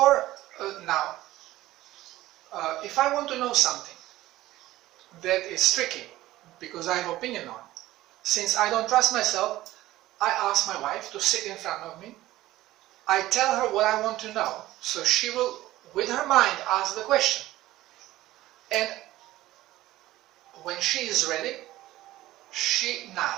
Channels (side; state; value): left; quieter; 16.1 dB